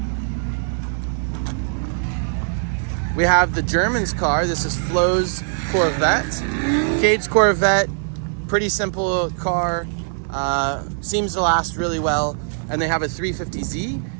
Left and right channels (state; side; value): silent; left; digital silence